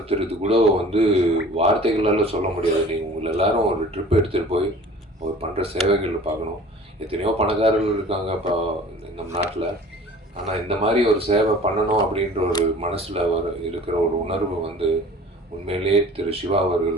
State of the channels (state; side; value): normal; both; correlation 0.45